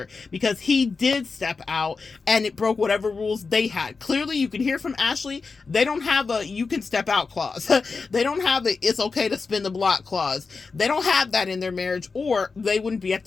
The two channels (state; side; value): quieter; right; 4.6 dB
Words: because he did step out and it broke whatever rules they had. Clearly, you can hear from Ashley, they don't have a you can step out clause. They don't have a it's okay to spin the block clause. They don't have that in their marriage, or they wouldn't be at